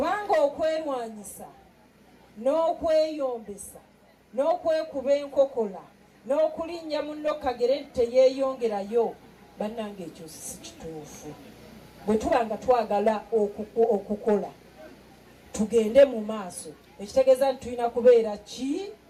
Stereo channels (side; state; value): both; identical; correlation 1.00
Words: okwerwanyisa n'okweyombesa n'okwekuba enkokola n'okulinnya munno kagere teyeeyongerayo, bannange ekyo si kituufu. Bwe tuba nga twagala okukola tugende mu maaso, ekitegeeza nti tulina kubeera ki?